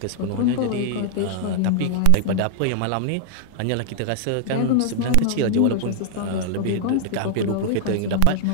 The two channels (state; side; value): different; both; correlation 0.00